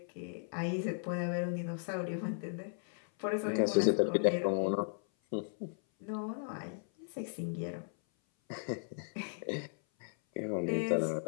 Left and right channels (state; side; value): silent; right; 54 dB below the other